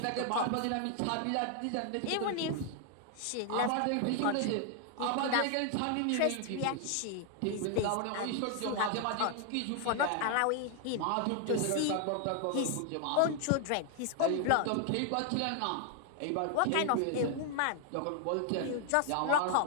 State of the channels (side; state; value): both; different; correlation 0.00